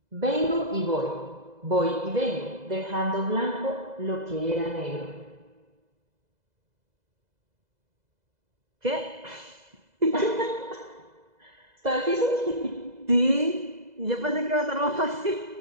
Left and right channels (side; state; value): left; late; 2.0 ms